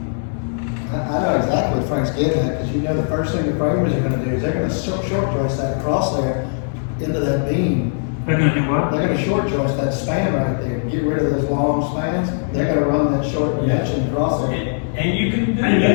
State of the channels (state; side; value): silent; right; digital silence